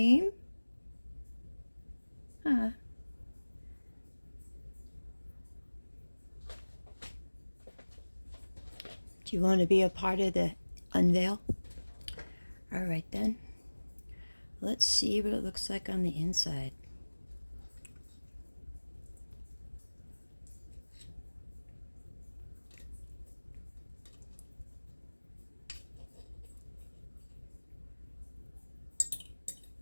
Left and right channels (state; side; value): inverted; both; correlation -1.00